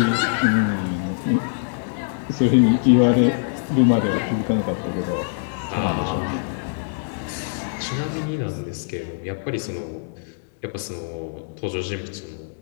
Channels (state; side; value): silent; right; digital silence